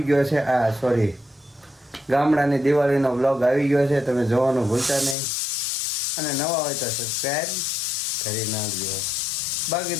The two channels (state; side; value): drops out; right; at 5.2 s